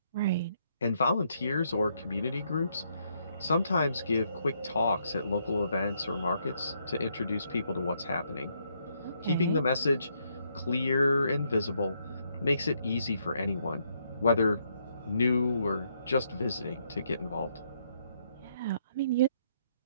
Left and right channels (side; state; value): both; inverted; correlation -0.74